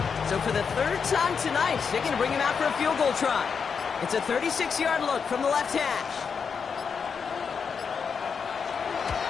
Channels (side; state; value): right; quieter; 6.1 dB